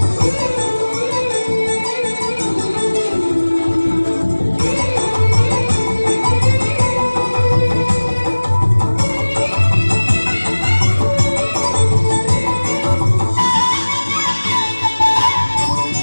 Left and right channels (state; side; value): inverted; both; correlation -1.00